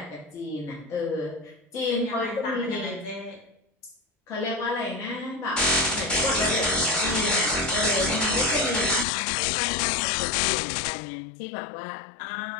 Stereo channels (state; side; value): drops out; right; at 9.1 s